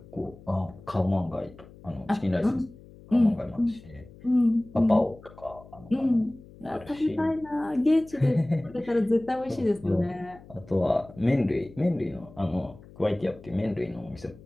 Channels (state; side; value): noise; left; hum, 21 dB below the sound